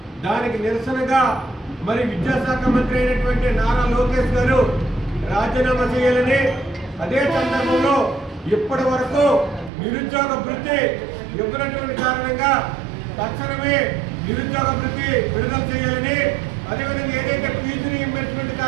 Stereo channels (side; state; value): left; drops out; at 9.7 s